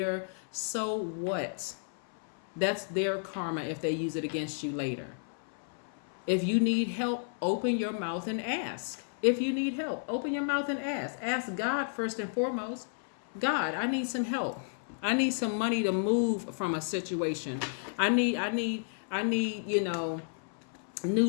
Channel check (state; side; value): silent; right; 56 dB below the other